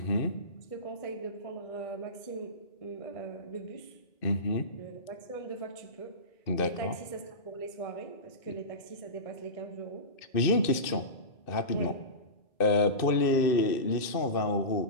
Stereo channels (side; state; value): right; late; 2.6 ms